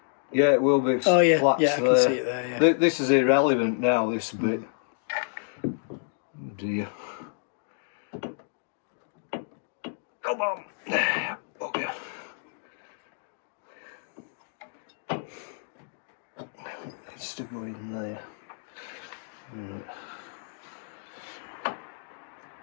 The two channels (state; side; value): silent; right; digital silence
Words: Yeah, it will be. Oh yeah, Flats yeah, I can there. see it there. Yeah. This is irrelevant now. This bit. Oh dear. Come on. Okay. It's to go in there. Right.